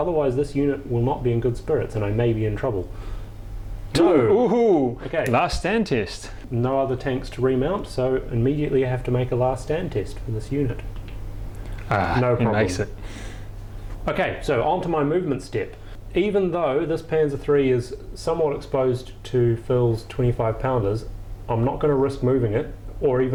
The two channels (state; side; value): identical; both; correlation 1.00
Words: this unit will not be in good spirits and I may be in trouble. No! Ooh, Okay. last stand test. No other tanks to remount, so immediately I have to make a last stand test for this unit. No He problem. makes it. Okay, so on to my movement step. Even though this Panzer III is somewhat exposed to Phil's 25 pounders, I'm not going to risk moving it, or